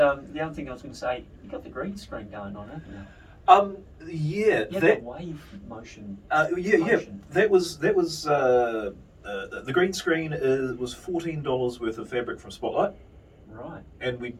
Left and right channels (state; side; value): identical; both; correlation 1.00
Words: other thing I was going to say, you got the green screen going on, haven't you? Yeah. Yeah, That. the wave motion. Yeah. motion. That was the green screen was $14 worth of fabric from Spotlight, Right. and we